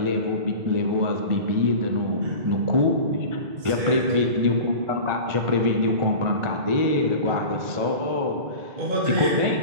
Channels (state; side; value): late; left; 2.2 ms